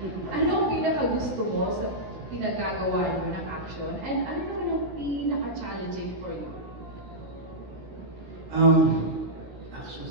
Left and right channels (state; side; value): late; left; 16 ms